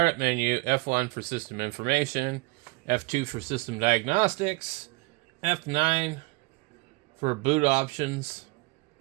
menu, F1 for system information, F2 for system diagnostics, F9 for boot options,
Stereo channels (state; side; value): quieter; left; 25.0 dB